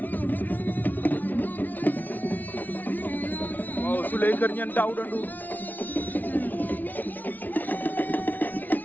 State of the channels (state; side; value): late; right; 0.082 ms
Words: waaw Souleye Kër Ñeen Daouda Ndour